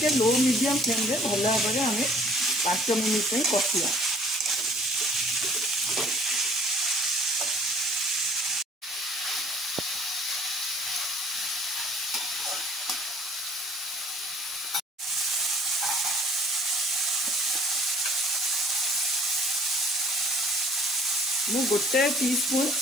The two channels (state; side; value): normal; both; correlation 0.55